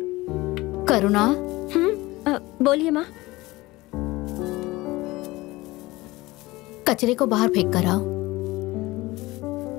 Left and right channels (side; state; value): right; quieter; 20.2 dB